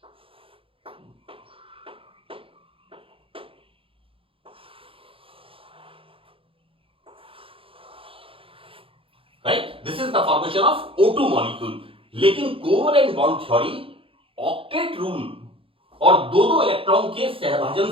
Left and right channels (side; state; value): left; late; 0.26 ms